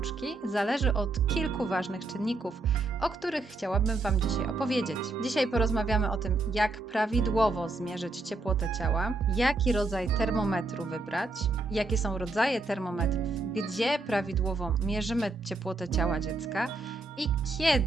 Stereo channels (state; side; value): quieter; left; 3.2 dB